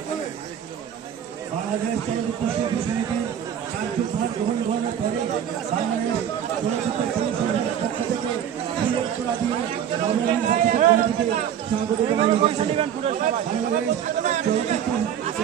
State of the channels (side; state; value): left; quieter; 9.4 dB